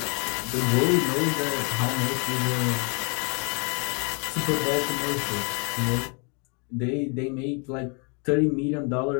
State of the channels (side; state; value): right; quieter; 35.3 dB